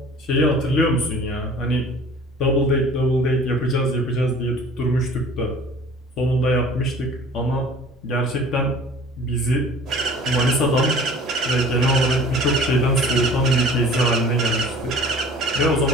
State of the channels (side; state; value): both; normal; correlation 0.46